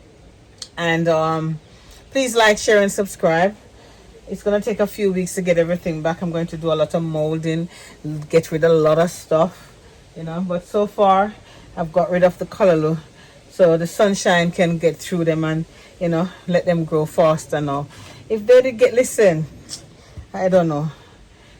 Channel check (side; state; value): both; identical; correlation 1.00